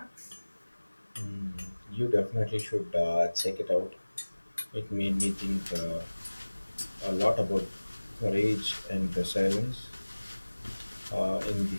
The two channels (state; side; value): inverted; both; correlation -1.00